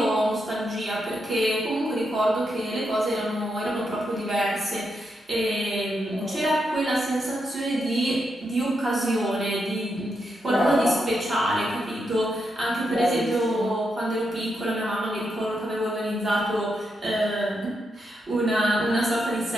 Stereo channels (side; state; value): both; normal; correlation 0.83